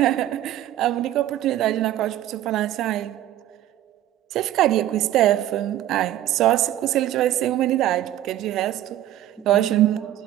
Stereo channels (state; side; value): quieter; left; 13.1 dB